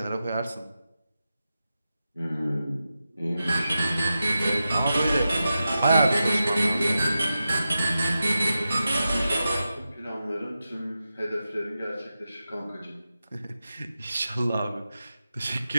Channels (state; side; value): inverted; both; correlation -0.91